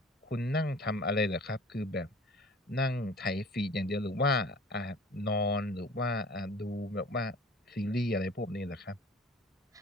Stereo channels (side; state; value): both; normal; correlation 0.45